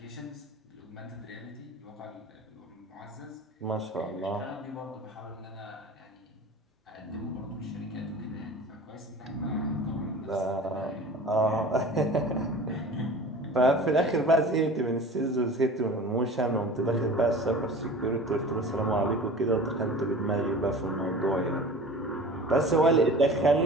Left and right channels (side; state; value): both; normal; correlation 0.39